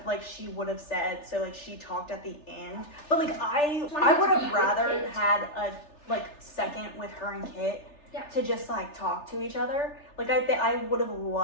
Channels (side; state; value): right; late; 3.3 ms